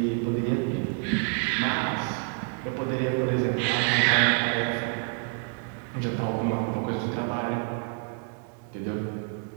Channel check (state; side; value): quieter; left; 38.5 dB